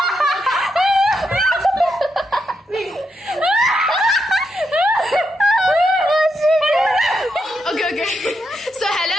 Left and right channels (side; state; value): both; normal; correlation 0.82